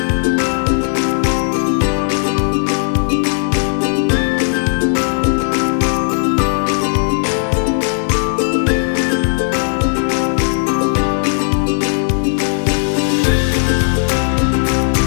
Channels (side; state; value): right; silent; digital silence